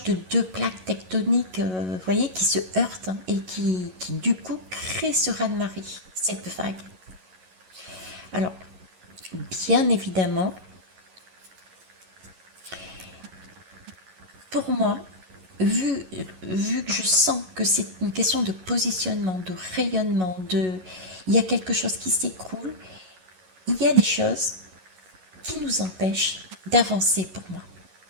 de deux plaques tectoniques, vous voyez, qui se heurtent et qui du coup créent ce raz-de-marée, cette vague. Alors, bien évidemment, pour moi, vu, vu que je sens que c'est une question de positionnement, de rayonnement, il y a quelque chose qui s'écroule, il y a des choses qui nous empêchent d'avancer pour moi.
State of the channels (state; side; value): late; left; 11 ms